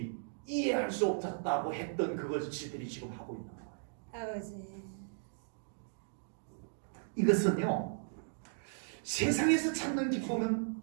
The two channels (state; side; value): silent; left; digital silence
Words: 이해할 수 없었다고 했던 그것을 지들이 지금 하고 있는 거예요. 아버지. 이것은요, 세상에서 찾는